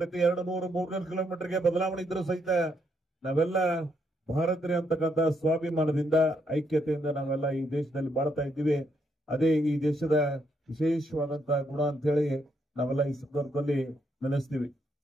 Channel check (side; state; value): both; normal; correlation 0.76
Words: 200-300 ಕಿಲೋಮೀಟರ್ಗೆ ಬದಲಾವಣೆ ಇದ್ರೂ ಸಹಿತ ನಾವೆಲ್ಲ ಭಾರತೀಯರು ಅಂತಕ್ಕಂಥ ಸ್ವಾಭಿಮಾನದಿಂದ, ಐಕ್ಯತೆಯಿಂದ ನಾವೆಲ್ಲ ಈ ದೇಶದಲ್ಲಿ ಬಾಳ್ತಾ ಇದ್ದೀವಿ. ಅದೇ ಈ ದೇಶದ ವಿಶೇಷವಾದಂತಹ ಗುಣ ಅಂತ ಹೇಳಿ ನಾವೆಲ್ಲ ಈ ಸಂದರ್ಭದಲ್ಲಿ ನೆನೆಸ್ತೀವಿ.